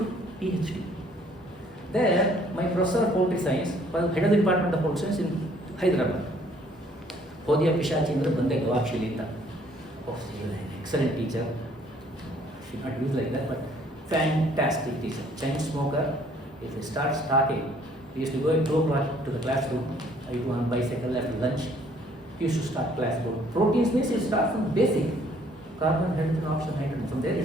PhD. There, my professor of political science was head of the department of political science in Hyderabad. Hodya Pishachindra Bande Gavakshilita. Oh, she was an excellent teacher. She not used like that, but fantastic teacher. Chain smoker. If he starts talking, we used to go at 2 o'clock to the classroom. I go on bicycle after lunch. He used to start class. Proteins means it starts from basic. Carbon, hydrogen, oxygen, nitrogen. From there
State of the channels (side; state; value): both; normal; correlation 0.61